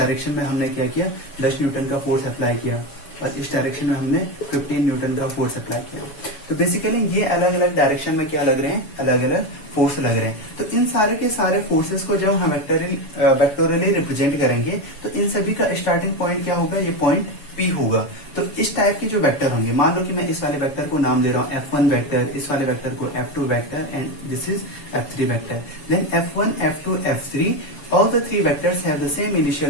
में हमने क्या किया, 10 न्यूटन का फोर्स अप्लाई किया, और इस डायरेक्शन में हमने 15 न्यूटन का फोर्स अप्लाई किया। तो बेसिकली ये अलग अलग डायरेक्शन में क्या लग रहे हैं, अलग अलग फोर्स लग रहे हैं। तो इन सारे के सारे फोर्सेस को जब हम वेक्टोरियली रिप्रेजेंट करेंगे, तो इन सभी का स्टार्टिंग पॉइंट क्या होगा, ये पॉइंट P होगा। तो इस टाइप के जो वेक्टर होंगे, मान लो कि मैं इस वाले वेक्टर को नाम दे रहा हूँ F1 वेक्टर, इस वाले वेक्टर को F2 vector, and this is F3 vector. Then F1, F2, F3, all the three vectors have the same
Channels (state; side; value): late; right; 7.1 ms